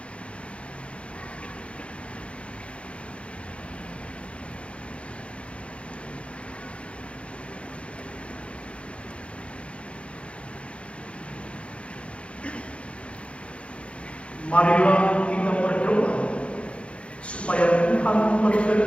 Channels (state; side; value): late; right; 0.060 ms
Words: Marilah kita berdoa supaya Tuhan